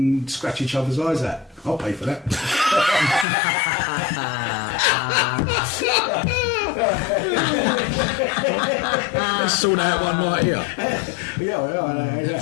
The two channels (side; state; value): right; drops out; at 3.2 s